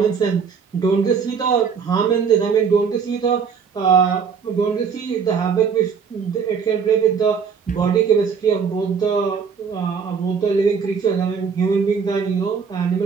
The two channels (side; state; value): left; quieter; 6.3 dB